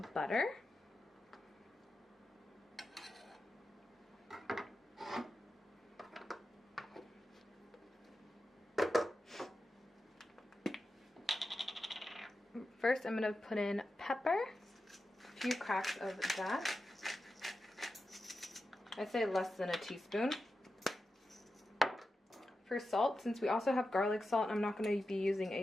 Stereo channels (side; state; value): both; normal; correlation 0.91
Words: butter. First, I'm going to put in pepper, a few cracks of that. I'd say less than a teaspoon. For salt, since we also have garlic salt, I'm not going to be using